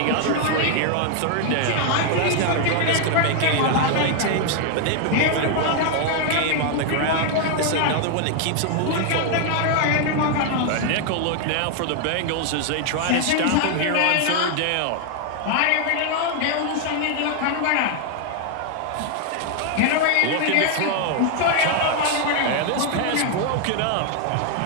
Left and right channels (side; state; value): both; different; correlation 0.00